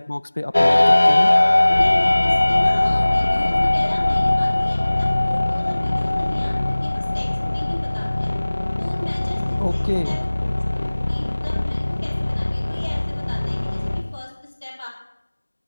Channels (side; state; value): both; inverted; correlation -1.00